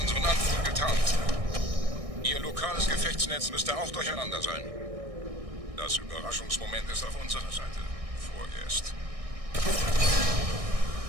Anflug getarnt. Ihr lokales Gefechtsnetz müsste auch durcheinander sein. Das Überraschungsmoment ist auf unserer Seite. Vorerst.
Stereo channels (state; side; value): late; left; 1.6 ms